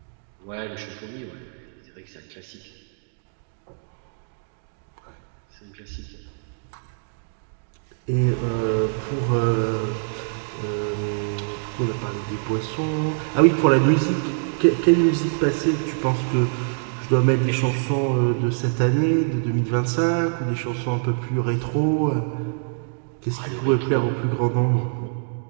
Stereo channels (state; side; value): silent; left; digital silence